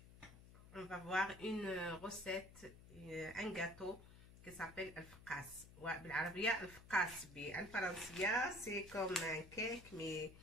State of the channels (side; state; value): left; noise; hum, 18 dB below the sound